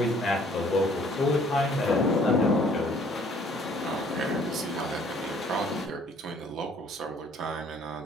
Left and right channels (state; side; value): normal; both; correlation 0.58